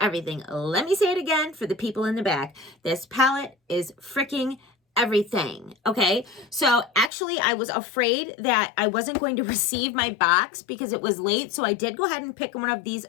Let me say it again for the people in the back. This palette is freaking everything. Okay, so actually I was afraid that I wasn't going to receive my box because it was late, so I did go ahead and pick one of these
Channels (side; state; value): right; drops out; at 7.1 s